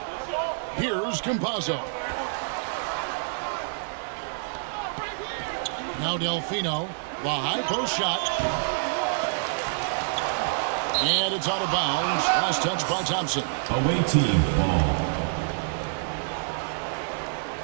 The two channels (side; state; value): left; silent; digital silence